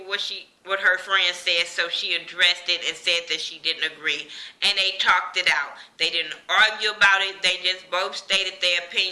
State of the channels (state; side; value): identical; both; correlation 1.00